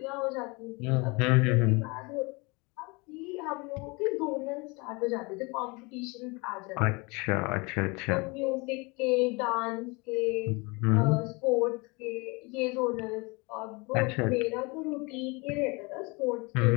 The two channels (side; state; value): right; quieter; 27.6 dB